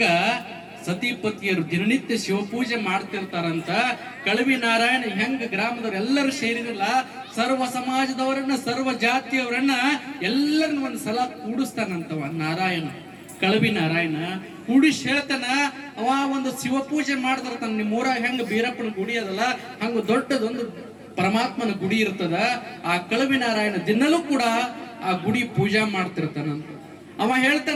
ಸತಿಪತಿಯರು ದಿನನಿತ್ಯ ಶಿವಪೂಜೆ ಮಾಡ್ತಿರ್ತಾರಂತ. ಕಳವಿ ನಾರಾಯಣ ಹೆಂಗ ಗ್ರಾಮದವ್ರು ಎಲ್ಲರೂ ಸೇರಿರಲ್ಲ, ಸರ್ವ ಸಮಾಜದವರನ್ನ ಸರ್ವ ಜಾತಿಯವರನ್ನ ಎಲ್ಲರನ್ನ ಒಂದ್ ಸಲ ಕೂಡಿಸ್ತಾನಂತವ ನಾರಾಯಣ. ಕಳವಿ ನಾರಾಯಣ ಕೂಡಿಸಿ ಹೇಳ್ತಾನ, ಅವ ಒಂದು ಶಿವಪೂಜೆ ಮಾಡ್ತಿರ್ತಾನ. ನಿಮ್ಮ ಊರಾಗ ಹೆಂಗ ಬೀರಪ್ಪನ ಗುಡಿ ಅದಲ್ಲ, ಹಂಗ ದೊಡ್ಡದೊಂದು ಪರಮಾತ್ಮನ ಗುಡಿ ಇರ್ತದ. ಆ ಕಳವಿ ನಾರಾಯಣ ದಿನಲೂ ಕೂಡ ಆ ಗುಡಿ ಪೂಜಾ ಮಾಡ್ತಿರ್ತಾನಂತ. ಅವ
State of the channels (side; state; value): both; identical; correlation 1.00